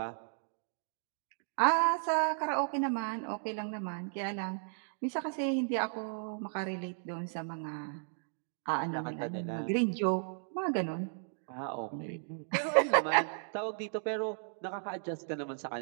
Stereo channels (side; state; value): left; silent; digital silence